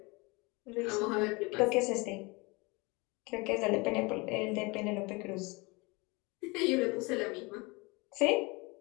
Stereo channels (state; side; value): quieter; right; 26.5 dB